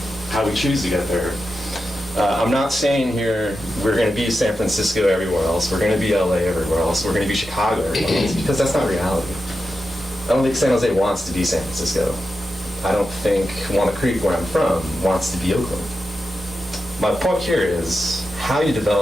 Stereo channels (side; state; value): both; normal; correlation 0.89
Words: how we choose to get there. I'm not saying here we're going to be San Francisco everywhere else, we're going to be LA everywhere else, we're going to be Chicago everywhere else, because that's not reality. I don't think San Jose wants to be San Francisco. I don't think Walnut Creek, where I'm from, wants to be Oakland. My point here is how you